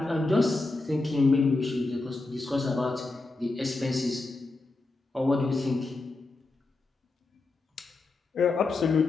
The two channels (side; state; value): right; quieter; 3.3 dB